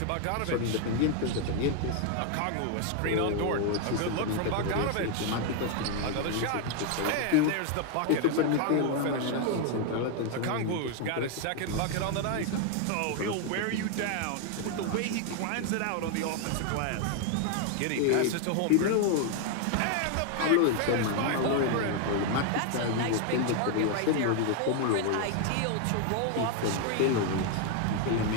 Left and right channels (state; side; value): different; both; correlation 0.00